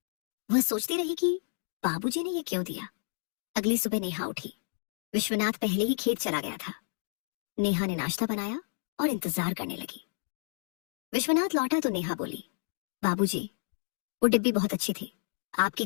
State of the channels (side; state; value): right; silent; digital silence